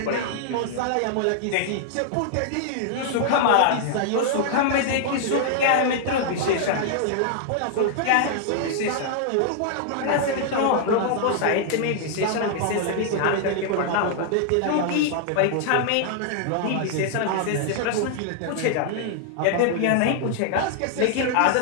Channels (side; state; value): both; different; correlation -0.01